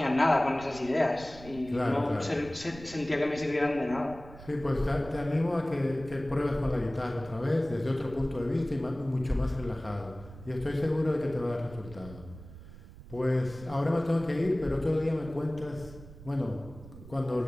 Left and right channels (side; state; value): right; noise; rumble, 16 dB below the sound